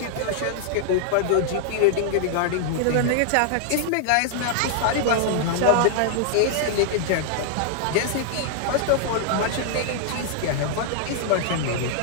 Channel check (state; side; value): different; both; correlation -0.01